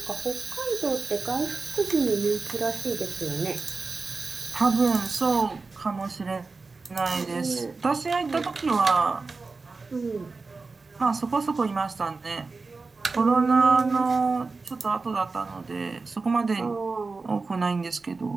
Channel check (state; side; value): quieter; left; 4.0 dB